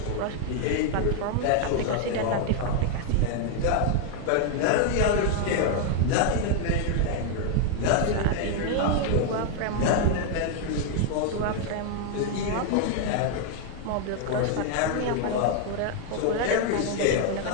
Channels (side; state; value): both; different; correlation 0.00